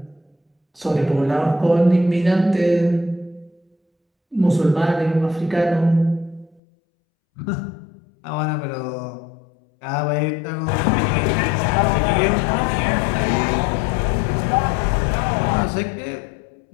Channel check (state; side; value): drops out; right; at 6.6 s